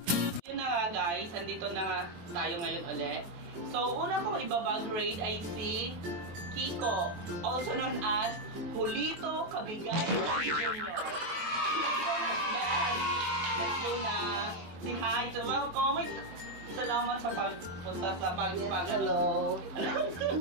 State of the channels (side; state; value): left; late; 23 ms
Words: Yun na nga guys, andito na nga tayo ngayon ulit. So, una kong ibabag raid ay si Kiko, also known as Julito Cabigay Jr. Let's go na, Beth! Let's go na! Say hi! So, welcome! Salamat sa pagpunta sa Hello!